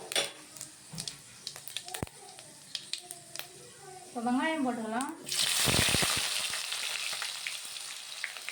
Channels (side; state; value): both; identical; correlation 1.00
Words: இப்போ வெங்காயம் போட்டுக்கலாம்.